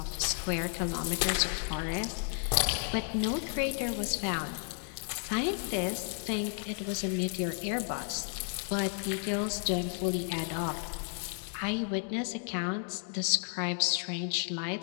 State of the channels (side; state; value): right; silent; 56 dB below the other